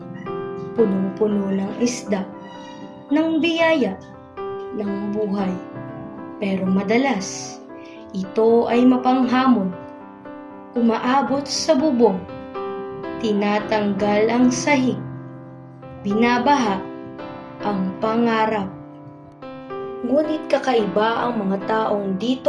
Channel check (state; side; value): identical; both; correlation 1.00